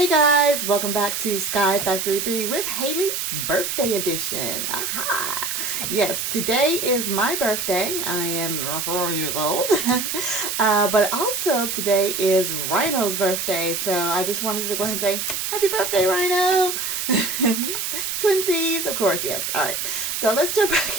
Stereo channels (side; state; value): right; noise; hiss, 2 dB below the sound